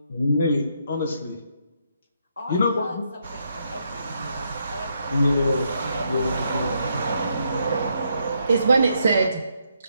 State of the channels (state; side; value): inverted; both; correlation -0.77